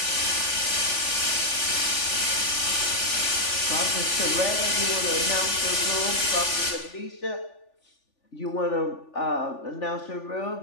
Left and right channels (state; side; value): late; right; 3.4 ms